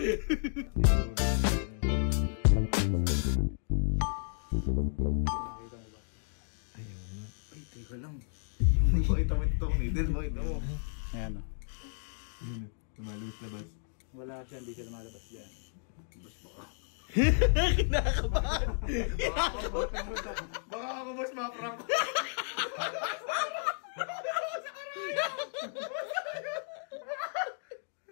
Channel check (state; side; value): silent; right; digital silence